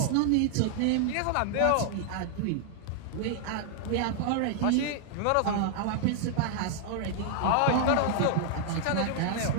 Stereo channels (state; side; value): different; both; correlation 0.00